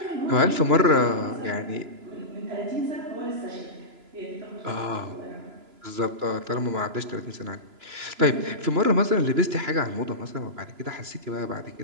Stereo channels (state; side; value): late; left; 3.0 ms